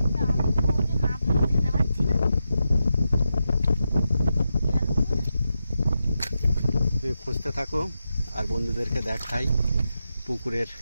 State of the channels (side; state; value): both; inverted; correlation -0.88